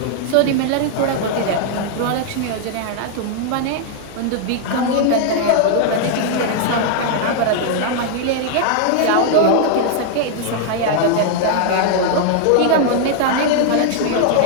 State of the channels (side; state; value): both; different; correlation -0.01